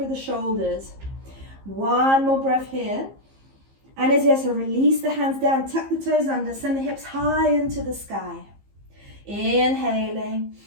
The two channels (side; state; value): left; late; 15 ms